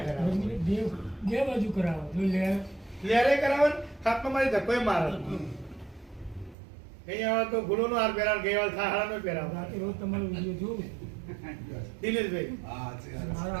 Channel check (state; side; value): drops out; left; at 6.6 s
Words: કરાવે. દેવ બે બાજુ કરાવો જો લેરે કરાવે હાથમાં મારી ધક્કોય મારે. અહીંયા તો ગુલોનો હાર પહેરાવ, ગઈવાલ થાળાનો પહેરાવ. રાતે રોજ તમારો વિડીયો જોઉં દિનેશભાઈ મારે